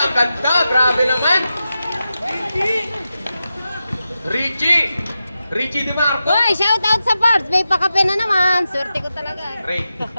ganda! Grabe naman! Richie! Richie Di Marco! Uy, shout out sa Parts. May pakape na naman. Swerte ko talaga. Ray.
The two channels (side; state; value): both; inverted; correlation -0.91